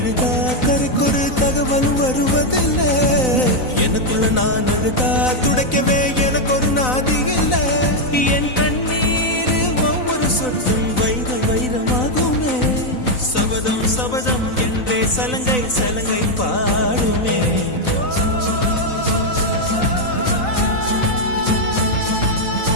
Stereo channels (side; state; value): right; late; 4.0 ms